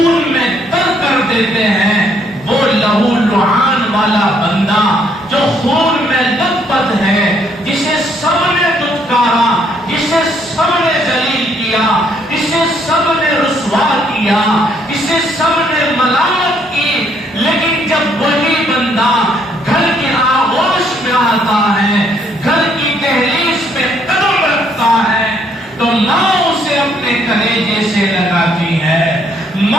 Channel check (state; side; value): normal; both; correlation 0.68